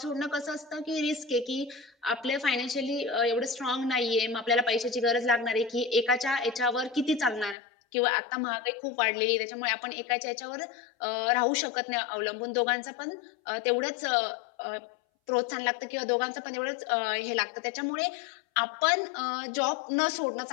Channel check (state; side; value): drops out; right; at 7.6 s